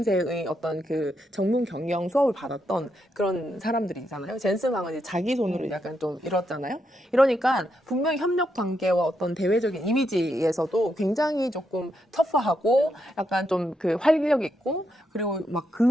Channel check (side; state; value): both; normal; correlation 0.81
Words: 어떤 그 전문 경영 수업을 받았던 그런 사람들이잖아요. 젠슨 황은 이제 자기 손으로 약간 좀 이뤘잖아요. 이러니까 분명히 협력 관계와 어떤 대외적인 이미지에서도 굉장히 조금 터프하고 약간 좀 그 활력 있고 그리고 막